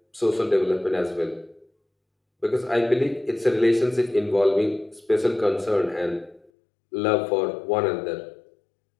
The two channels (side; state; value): right; drops out; at 6.5 s